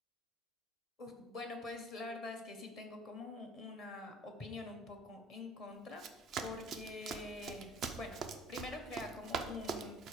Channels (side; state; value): both; normal; correlation 0.50